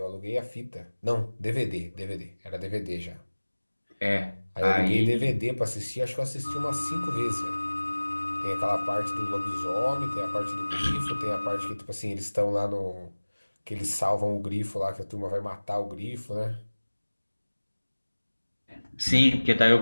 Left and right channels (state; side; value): inverted; both; correlation -1.00